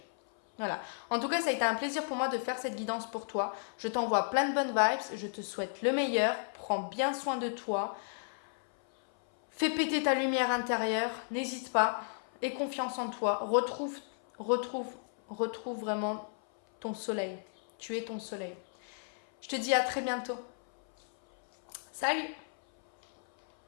Voilà. En tout cas, ça a été un plaisir pour moi de faire cette guidance pour toi. Je t'envoie plein de bonnes vibes, je te souhaite le meilleur, prends bien soin de toi, fais péter ta lumière intérieure, n'hésite pas, aie confiance en toi, retrouve vraiment ton soleil. Tu es ton soleil. Je te dis à très bientôt. Salut!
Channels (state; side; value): silent; right; 55 dB below the other